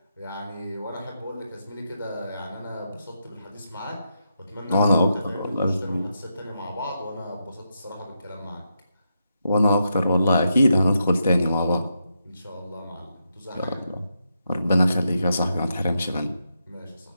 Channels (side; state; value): both; inverted; correlation -0.84